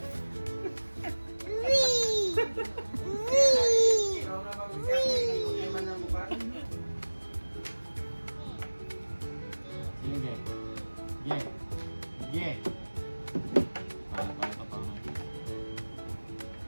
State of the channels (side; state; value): both; inverted; correlation -1.00